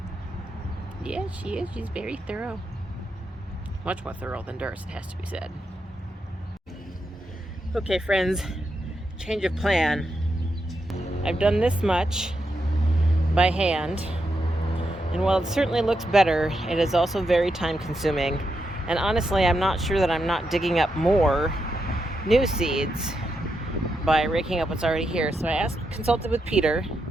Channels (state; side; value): normal; both; correlation 0.84